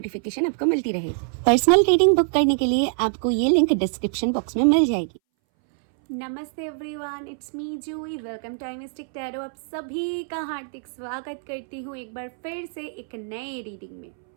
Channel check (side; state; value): left; silent; 62 dB below the other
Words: आपको मिलती रहे। पर्सनल रीडिंग बुक करने के लिए आपको ये लिंक डिस्क्रिप्शन बॉक्स में मिल जाएगी। नमस्ते everyone, it's me Juhi. Welcome to mystic tarot. आप सभी का हार्दिक स्वागत करती हूँ एक बार फिर से एक नए रीडिंग में।